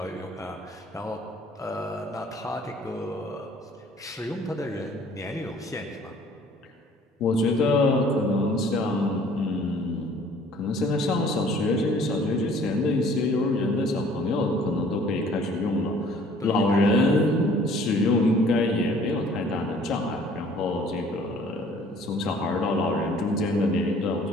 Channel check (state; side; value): normal; both; correlation 0.54